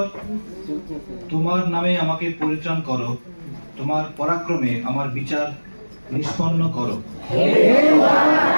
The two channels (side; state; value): both; inverted; correlation -1.00